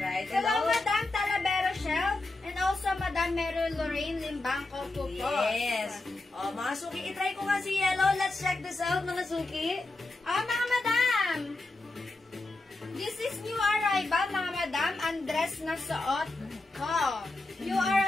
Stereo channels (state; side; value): quieter; right; 3.0 dB